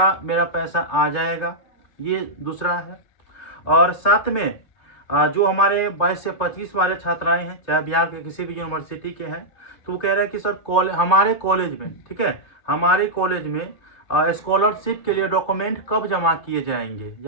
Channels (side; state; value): right; late; 3.3 ms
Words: मेरा पैसा आ जाएगा, ये दूसरा है। और साथ में जो हमारे 22 से 25 वाले छात्राएं हैं, चाहे बिहार के किसी भी यूनिवर्सिटी के हैं, तो वो कह रहे हैं कि सर हमारे कॉलेज में, ठीक है, हमारे कॉलेज में स्कॉलरशिप के लिए डॉक्यूमेंट कब जमा किए जाएंगे